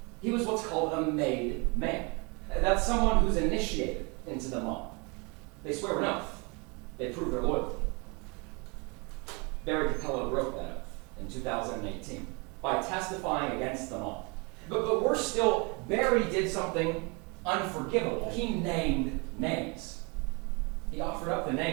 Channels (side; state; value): left; quieter; 30.5 dB